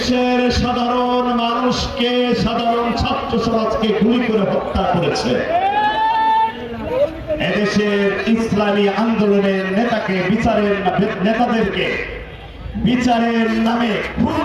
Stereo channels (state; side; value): identical; both; correlation 1.00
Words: সাধারণ মানুষকে, সাধারণ ছাত্র সমাজকে গুলি করে হত্যা করেছে, এদেশের ইসলামী আন্দোলনের নেতাদেরকে বিচারের নামে খুন